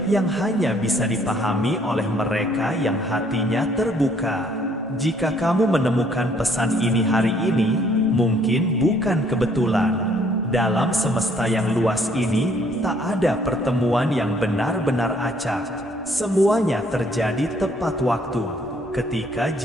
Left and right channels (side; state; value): both; normal; correlation 0.63